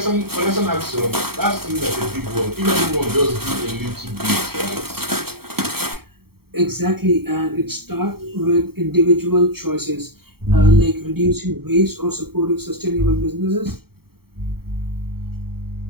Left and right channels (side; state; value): left; late; 0.95 ms